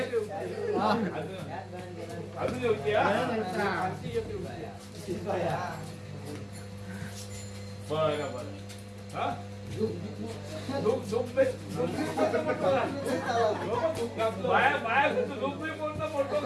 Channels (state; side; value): identical; both; correlation 1.00